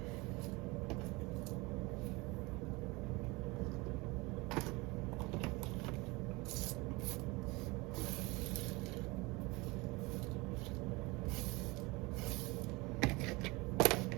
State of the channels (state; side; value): quieter; left; 24.4 dB